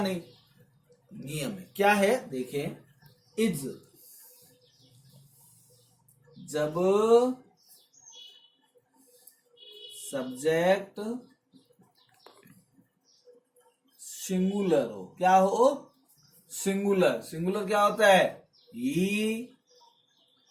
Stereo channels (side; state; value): both; identical; correlation 1.00